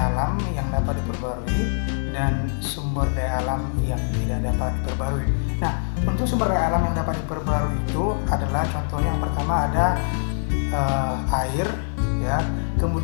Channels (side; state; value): right; silent; 59 dB below the other